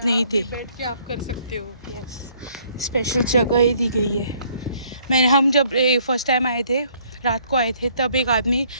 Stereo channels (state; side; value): inverted; both; correlation -0.63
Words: ही थे। बैठ के आप कर सकते हो। यस, स्पेशल जगह ही दी गई है। हम जब फर्स्ट टाइम आए थे रात को आए थे तब एक आदमी